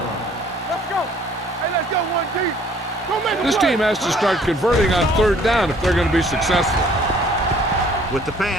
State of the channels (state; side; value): normal; both; correlation 0.57